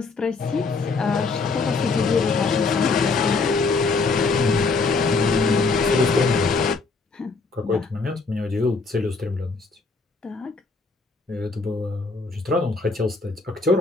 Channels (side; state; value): right; quieter; 4.1 dB